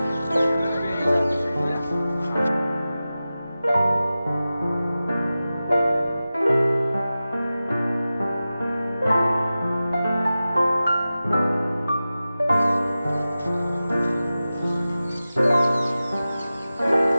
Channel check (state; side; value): inverted; both; correlation -0.95